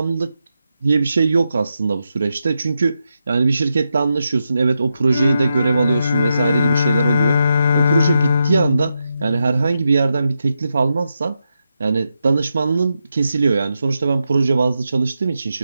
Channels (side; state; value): both; inverted; correlation -0.86